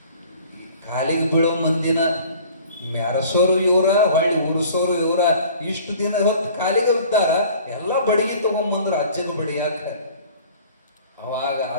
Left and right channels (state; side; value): inverted; both; correlation -0.48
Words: ಕಾಲಿಗೆ ಬೀಳೋ ಮಂದಿನ ಮೆರಸೋರು ಇವರ, ಹೊಳ್ಳಿ ಉರ್ಸೋರು ಇವರ. ಇಷ್ಟು ದಿನ ಹೊತ್ತು ಕಾಲಿಗೆ ಬಿದ್ದಾರ, ಎಲ್ಲ ಬಡಿಗೆ ತಗೊಂಬಂದ್ರ ಅಜ್ಜಗ ಬಡಿಯಾಕ. ಅವಾಗ